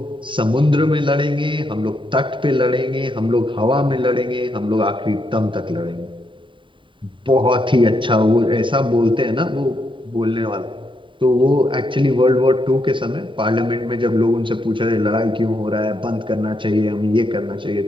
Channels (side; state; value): left; late; 0.24 ms